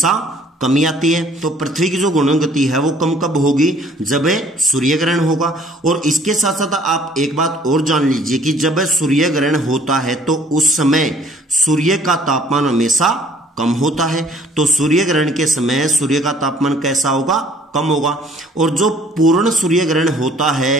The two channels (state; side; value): normal; both; correlation 0.57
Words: कमी आती है। तो पृथ्वी की जो घूर्णन गति है वो कम कब होगी? जब सूर्य ग्रहण होगा। और इसके साथ साथ आप एक बात और जान लीजिए कि जब सूर्य ग्रहण होता है तो उस समय सूर्य का तापमान हमेशा कम होता है। तो सूर्य ग्रहण के समय सूर्य का तापमान कैसा होगा? कम होगा। और जो पूर्ण सूर्य ग्रहण होता